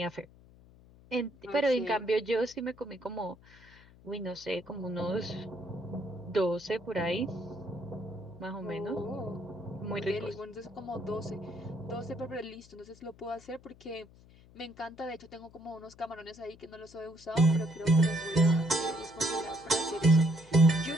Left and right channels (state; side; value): noise; left; hum, 24 dB below the sound